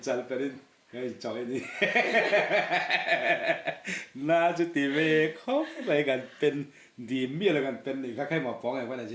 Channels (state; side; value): identical; both; correlation 1.00